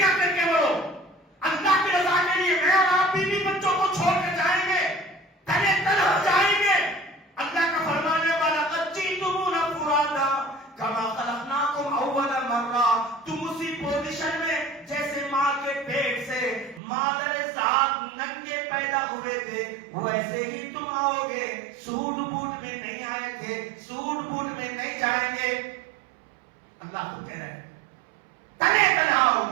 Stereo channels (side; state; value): left; drops out; at 16.8 s